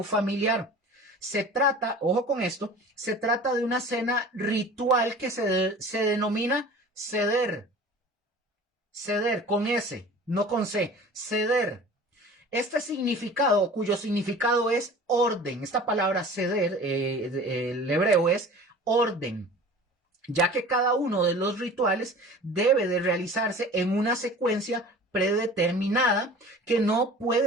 familiar. Se trata, ojo con esto, se trata de una cena ritual que se denomina seder. Seder, con S, no con C, seder. Este significado, cuyo significado es orden, esta palabra seder, el hebreo es orden, ya que cada uno de los rituales debe de realizarse en una secuencia predeterminada que no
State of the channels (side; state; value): both; normal; correlation 0.42